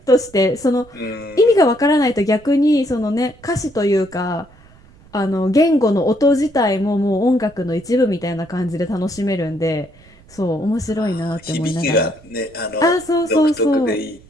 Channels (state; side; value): noise; right; rumble, 25 dB below the sound